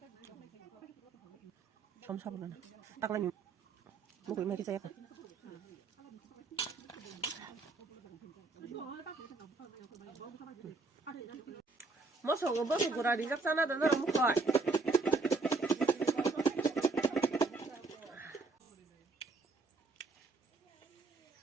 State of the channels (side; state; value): left; quieter; 3.9 dB